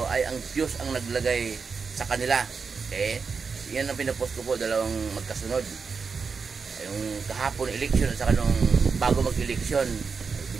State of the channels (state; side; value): quieter; left; 5.3 dB